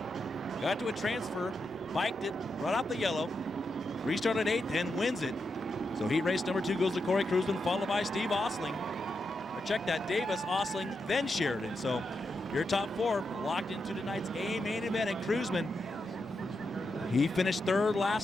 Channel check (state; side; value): normal; both; correlation 0.86